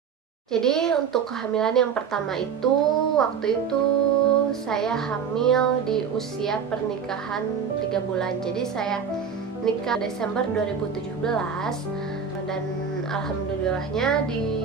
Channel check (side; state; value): left; quieter; 6.7 dB